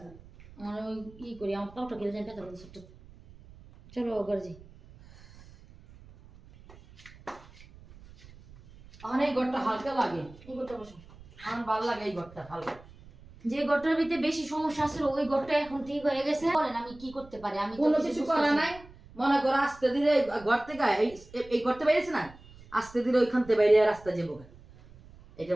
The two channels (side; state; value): right; noise; rumble, 21 dB below the sound